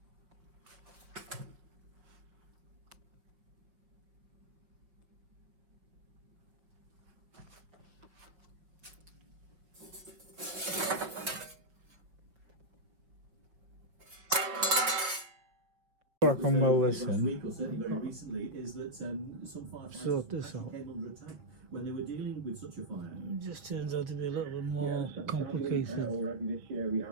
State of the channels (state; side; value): late; left; 5.3 ms